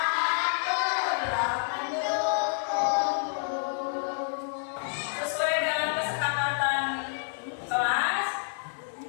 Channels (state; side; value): silent; right; 56 dB below the other